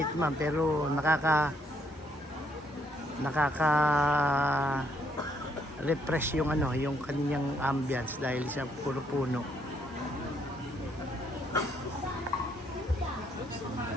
man pero refresh yung yung kanyang ambience dahil sa puro puno.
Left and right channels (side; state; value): both; normal; correlation 0.71